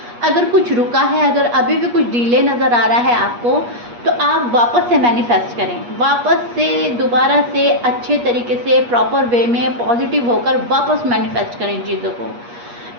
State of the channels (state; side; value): late; left; 8.4 ms